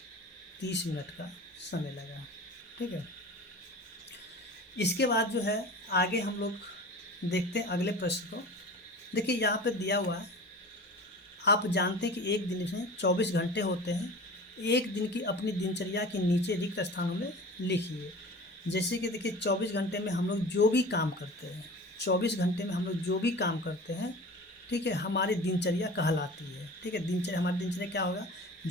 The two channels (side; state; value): both; normal; correlation 0.37